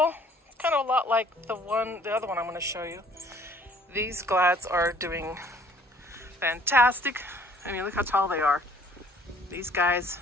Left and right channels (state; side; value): normal; both; correlation 0.57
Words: It's kind of a lot like the other one I'm going to show you. These glads are doing fantastic. I mean, look how tall they are. These guys,